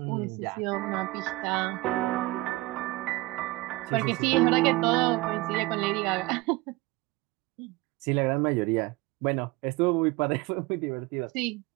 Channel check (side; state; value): left; quieter; 21.5 dB